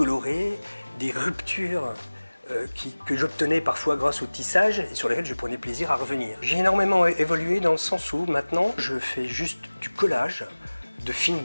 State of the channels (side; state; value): both; inverted; correlation -1.00